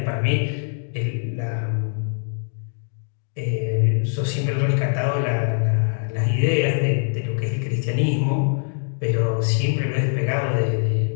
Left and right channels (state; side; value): silent; right; 61 dB below the other